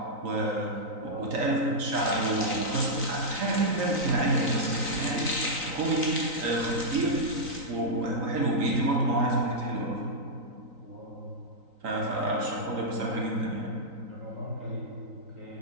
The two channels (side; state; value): left; late; 3.9 ms